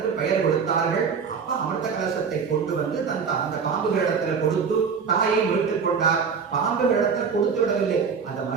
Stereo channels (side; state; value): left; quieter; 6.0 dB